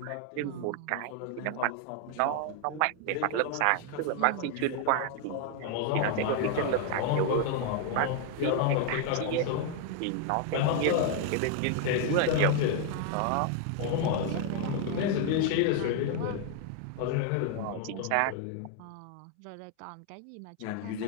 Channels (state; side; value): different; both; correlation 0.00